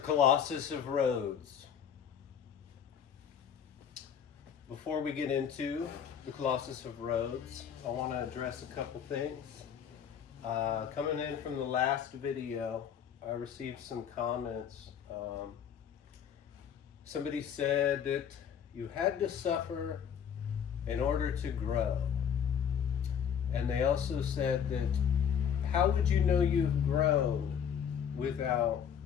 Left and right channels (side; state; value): right; quieter; 8.2 dB